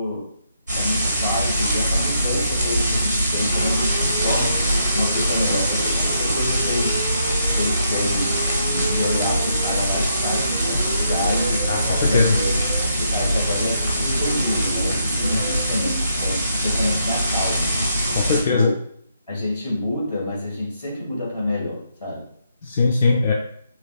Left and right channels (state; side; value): inverted; both; correlation -0.76